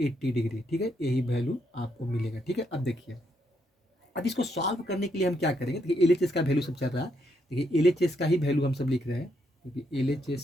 डिग्री। ठीक है, यही वैल्यू आपको मिलेगा। ठीक है, अब देखिए अब इसको सॉल्व करने के लिए हम क्या करेंगे, देखिए LHS का वैल्यू सब चल रहा है, देखिए LHS का ही वैल्यू हम सब लिख रहे हैं, क्योंकि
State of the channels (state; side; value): normal; both; correlation 0.77